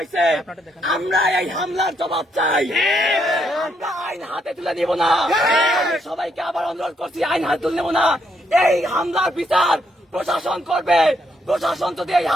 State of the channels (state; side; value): normal; both; correlation 0.75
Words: আমরা এই হামলার জবাব চাই, আমরা আইন হাতে তুলে নিব না। সবাইকে আবার অনুরোধ করছি, আইন হাতে তুলে নেব না। এই হামলার বিচার প্রশাসন করবে। প্রশাসন যদি এই